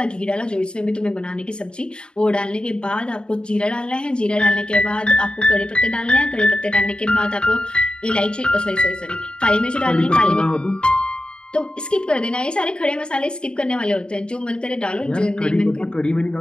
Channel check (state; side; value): late; right; 0.050 ms